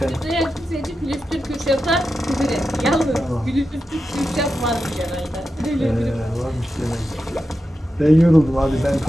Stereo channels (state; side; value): normal; both; correlation 0.90